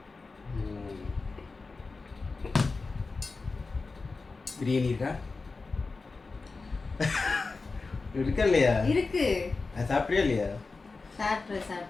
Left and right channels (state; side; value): quieter; right; 4.0 dB